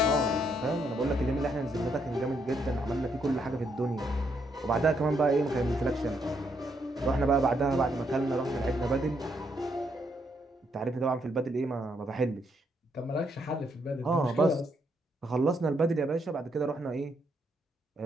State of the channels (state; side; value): normal; both; correlation 0.75